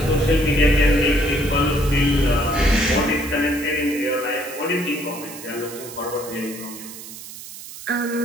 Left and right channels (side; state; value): right; noise; hiss, 13 dB below the sound